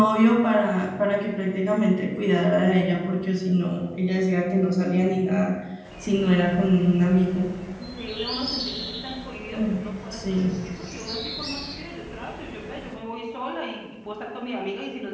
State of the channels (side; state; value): both; identical; correlation 1.00